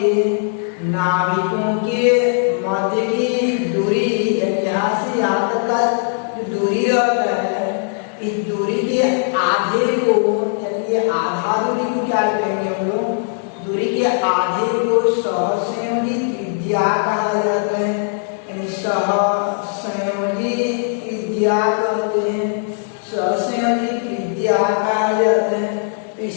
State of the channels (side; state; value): right; silent; digital silence